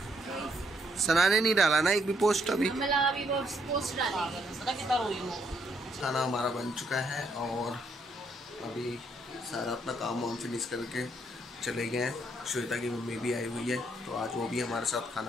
सना ने नहीं डाला ना एक भी पोस्ट अभी। पोस्ट डाली सना कितना रोई हो। खाना हमारा बन चुका है और अभी सारा अपना काम वाम फिनिश करके चले गए हैं। श्वेता की मम्मी भी आई हुई है तो आज वो भी हमारे साथ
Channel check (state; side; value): normal; both; correlation 0.72